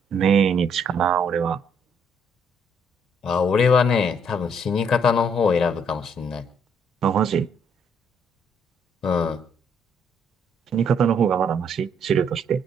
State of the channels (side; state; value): both; normal; correlation 0.68